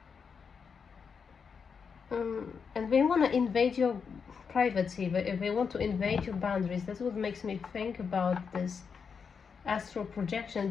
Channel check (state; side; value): quieter; right; 6.0 dB